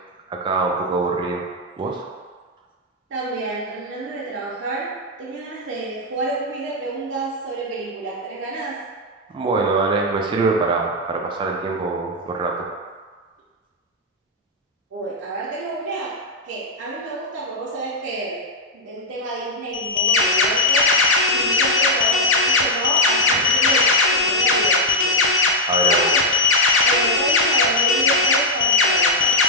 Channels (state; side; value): normal; both; correlation -0.01